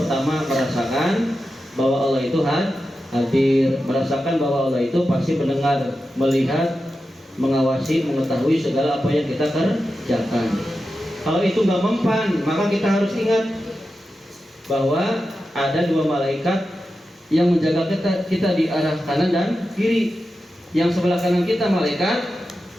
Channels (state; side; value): normal; both; correlation 0.91